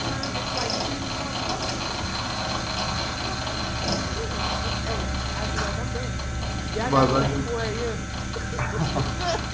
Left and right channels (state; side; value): identical; both; correlation 1.00